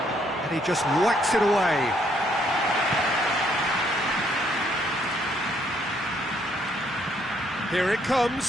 And he just whacks it away. Here it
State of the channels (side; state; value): both; normal; correlation 0.69